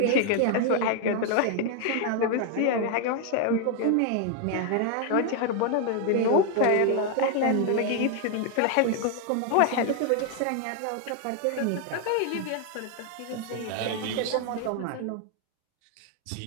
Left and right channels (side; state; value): both; different; correlation 0.00